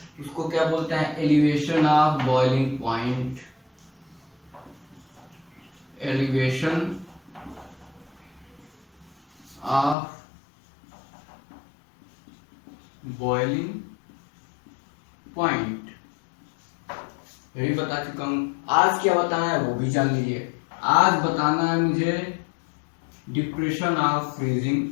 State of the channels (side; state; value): right; drops out; at 10.0 s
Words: उसको क्या बोलते हैं? Elevation of boiling point. Elevation of boiling point यही बता चुका हूं। आज क्या बताना है वो भी जान लीजिए। आज बताना है मुझे depression of freezing